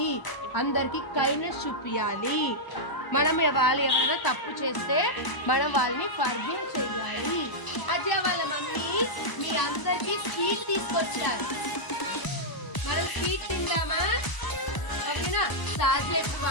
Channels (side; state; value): right; late; 1.0 ms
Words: అందరికి కైండ్నెస్ చూపించాలి. మనం వాళ్ళు ఎవరైనా తప్పు చేస్తే మనం వాళ్ళని ఫర్గివ్ చేయాలి. అజయ్ వాళ్ళ మమ్మీ మీ అందరికి స్వీట్ తీసుకొచ్చారు. మనం స్వీట్ తిందామా? ఓకేనా? సాధ్య